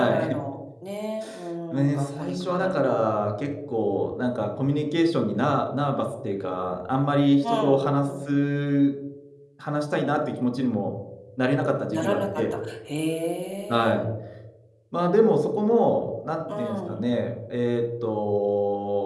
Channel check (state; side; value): identical; both; correlation 1.00